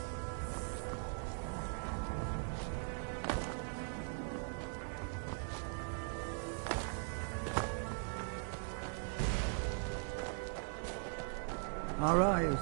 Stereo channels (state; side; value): silent; left; 51 dB below the other